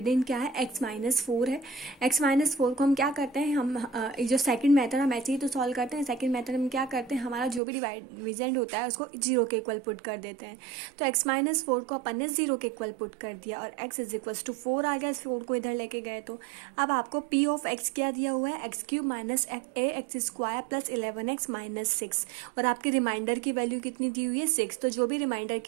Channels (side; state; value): left; drops out; at 7.6 s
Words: क्या है, x माइनस 4 है. x माइनस 4 को हम क्या करते हैं, हम जो सेकंड मेथड हम ऐसे ही तो सॉल्व करते हैं. सेकंड मेथड में क्या करते हैं, हमारा जो भी डिविडेंड होता है उसको 0 के इक्वल पुट कर देते हैं. तो x माइनस 4 को अपन ने 0 के इक्वल पुट कर दिया और x इज इक्वल्स टू 4 आ गया. इस 4 को इधर लेके गए तो अब आपको p ऑफ x क्या दिया हुआ है, x cube minus ax square plus 11x minus 6, और आपकी रिमाइंडर की वैल्यू कितनी दी हुई है, 6. तो जो भी रिमाइंडर